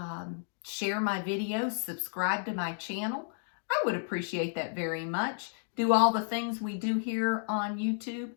share my videos, subscribe to my channel? I would appreciate that very much. Do all the things we do here on YouTube.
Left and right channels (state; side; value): silent; right; digital silence